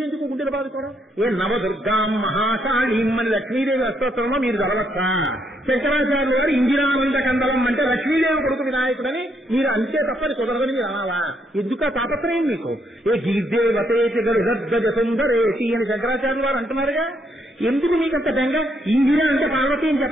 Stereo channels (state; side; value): normal; both; correlation 0.74